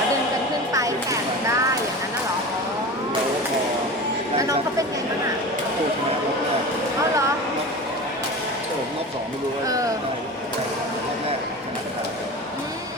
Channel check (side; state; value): both; normal; correlation 0.31